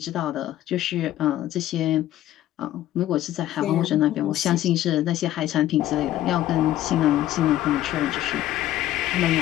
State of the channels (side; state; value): right; quieter; 13.5 dB